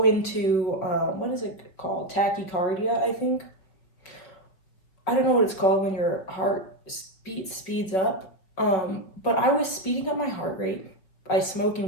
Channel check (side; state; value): right; late; 5.4 ms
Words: into, what is it called? Tachycardia, I think. I don't know what it's called when your heart speeds up. But I was speeding up my heart rate by